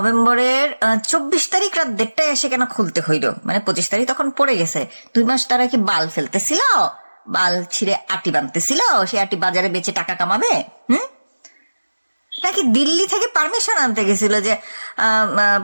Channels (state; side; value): inverted; both; correlation -1.00